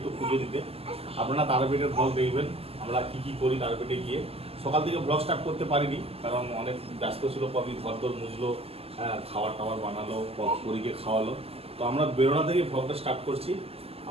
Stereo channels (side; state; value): left; late; 0.29 ms